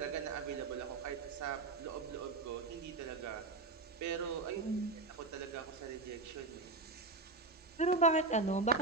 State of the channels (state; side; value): quieter; left; 3.6 dB